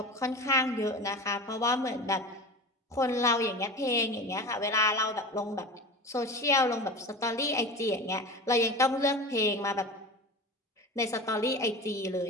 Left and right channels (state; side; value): normal; both; correlation 0.31